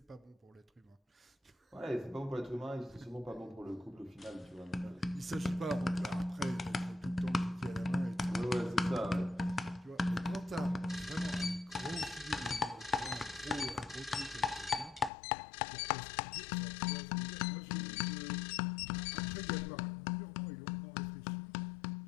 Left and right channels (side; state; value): right; drops out; at 15.1 s